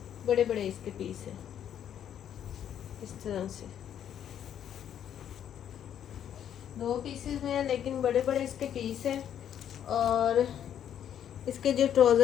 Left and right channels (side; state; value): right; quieter; 9.7 dB